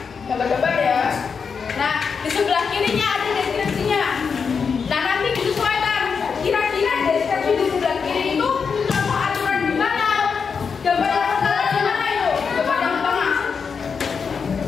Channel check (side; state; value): right; quieter; 5.8 dB